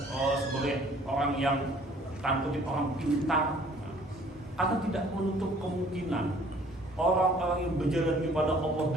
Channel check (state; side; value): normal; both; correlation 0.56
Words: sebagai orang yang tanda kutip orang pintar. Atau tidak menutup kemungkinan orang-orang yang berjalan kepada Allah